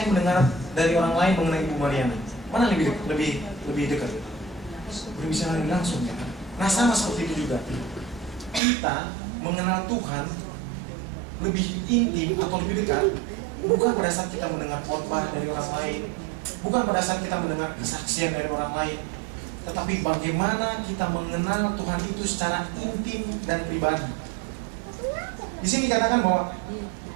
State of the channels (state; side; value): drops out; left; at 8.6 s